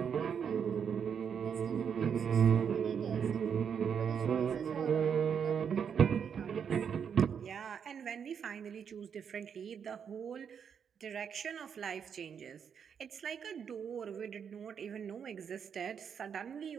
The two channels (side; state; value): left; quieter; 7.3 dB